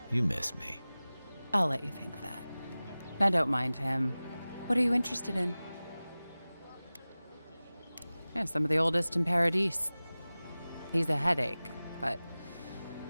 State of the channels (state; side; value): inverted; both; correlation -0.98